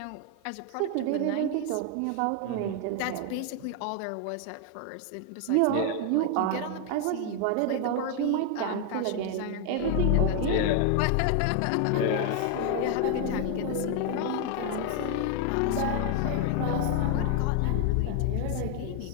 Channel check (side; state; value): both; different; correlation 0.00